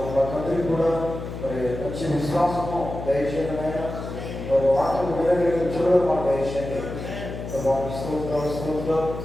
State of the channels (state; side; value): noise; left; hum, 8 dB below the sound